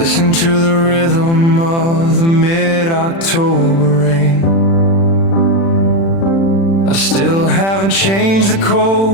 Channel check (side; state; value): right; late; 36 ms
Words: to the rhythm of the mid-October rain. I still haven't changed the